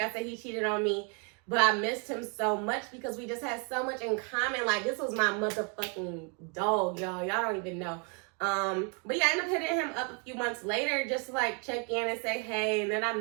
I said, he cheated on me. But I missed him so much because we just had so much in common. Like, this was my motherfucking dog, y'all. Y'all don't even know. But yeah, I ended up hitting him up a few months later just to like check in and say hey. And then I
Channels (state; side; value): quieter; left; 36.5 dB